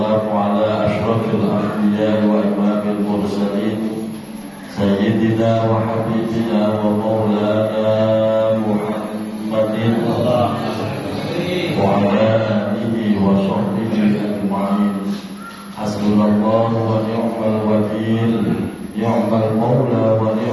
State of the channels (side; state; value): both; identical; correlation 1.00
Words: ala ashrafil anbiya wa imamil mursalin Sayyidina wa habibina wa maulana Muhammadin wa ala alihi wa sahbihi ajma'in. Hasbunallahu wa ni'mal wakil, ni'mal maula wa